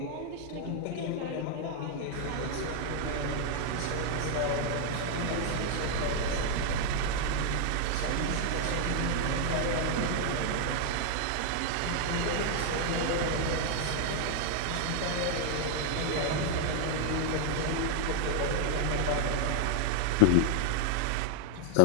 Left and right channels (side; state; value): both; different; correlation 0.00